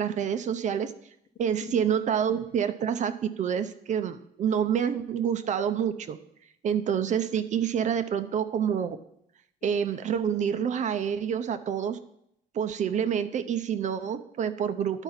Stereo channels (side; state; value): left; quieter; 7.8 dB